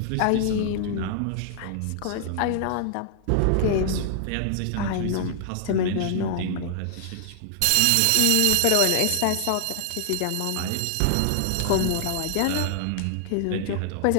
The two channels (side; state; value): both; different; correlation -0.01